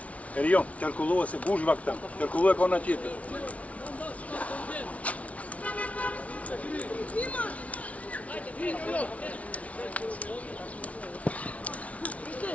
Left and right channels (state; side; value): late; right; 0.066 ms